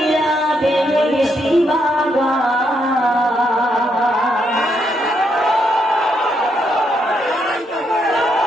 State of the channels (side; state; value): both; normal; correlation 0.77